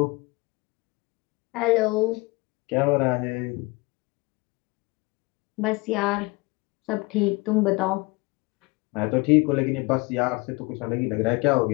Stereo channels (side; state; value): right; quieter; 25.1 dB